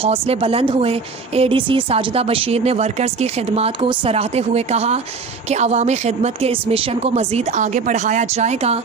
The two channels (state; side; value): quieter; left; 4.7 dB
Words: बुलंद हुए। ADC साजिदा बशीर ने वर्कर्स की खिदमत को सराहते हुए कहा कि अवामी खिदमत के इस मिशन को मज़ीद आगे बढ़ाया जाएगा।